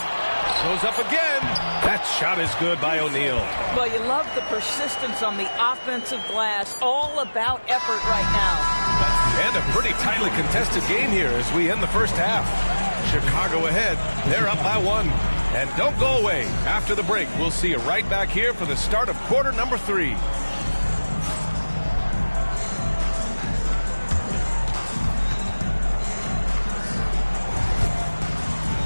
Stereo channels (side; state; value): both; inverted; correlation -1.00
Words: Goes up again. That shot is good by O'Neal. Well, you love the persistence on the offensive glass. All about effort right now. And a pretty tightly contested game here as we end the first half. Chicago ahead. They're up by 1. And don't go away. After the break, we'll see you right back here for the start of quarter number 3.